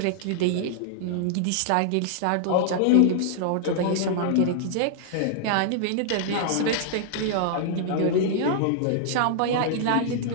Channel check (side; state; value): both; different; correlation -0.01